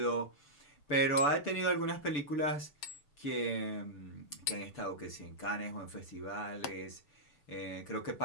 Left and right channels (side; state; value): right; late; 6.9 ms